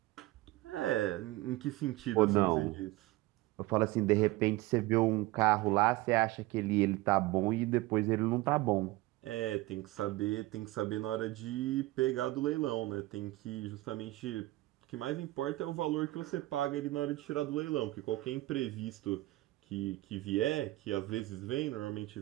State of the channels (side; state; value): left; quieter; 18.8 dB